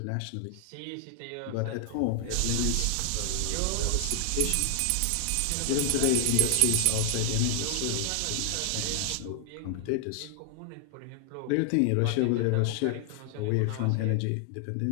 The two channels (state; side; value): different; both; correlation 0.00